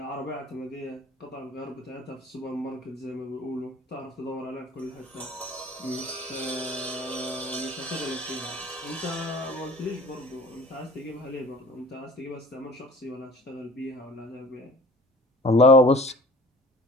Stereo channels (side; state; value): both; normal; correlation 0.47